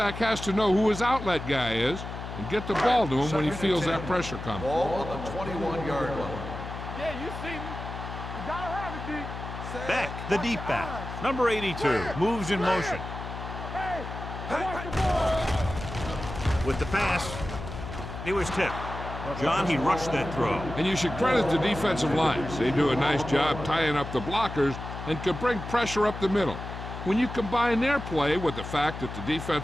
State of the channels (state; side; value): noise; left; hum, 9 dB below the sound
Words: has to know who his outlet guy is and get the ball to him when he feels that pressure coming. Ball on the 21-yard line. Yeah, you see me. You gotta have it, D. Beck, the deep back. Number 82, moves in motion. Hey, watch the ball. With the pass, he was tipped. John, he rushed that throw. And you should credit the defensive lines. They do a nice job tying up the blockers and can bring pressure up the middle. When you combine their play with the fact that the